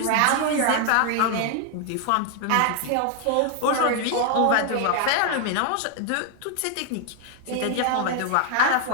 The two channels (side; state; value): both; different; correlation 0.00